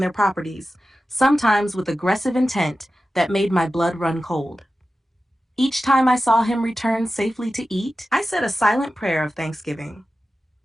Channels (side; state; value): both; normal; correlation 0.93